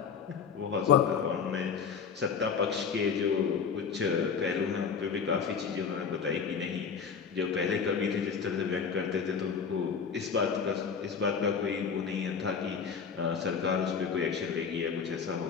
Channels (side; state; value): right; quieter; 6.3 dB